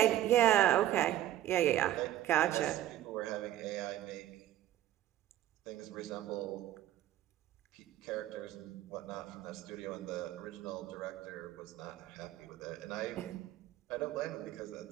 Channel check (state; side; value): quieter; left; 13.3 dB